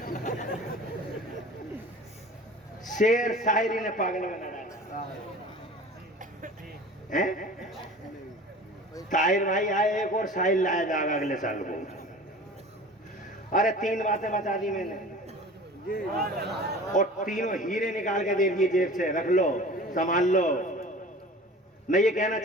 शेर शायरी ने पागल बना डाला है। ताहिर भाई आए, एक और शायर लाया जाएगा अगले साल को। अरे 3 बातें बता दी मैंने और तीनों हीरे निकाल के दे दिए जेब से, रख लो संभाल लो। मैं ये कहना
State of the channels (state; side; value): normal; both; correlation 0.41